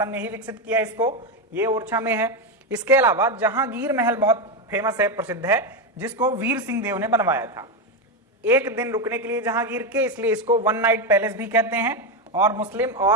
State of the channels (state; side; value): normal; both; correlation 0.09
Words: ने ही विकसित किया इसको, ये ओरछा में है। इसके अलावा जहांगीर महल बहुत फेमस है, प्रसिद्ध है, जिसको वीर सिंह देव ने बनवाया था। एक दिन रुकने के लिए जहांगीर के, इसलिए इसको 1 नाइट पैलेस भी कहते हैं। और मुस्लिम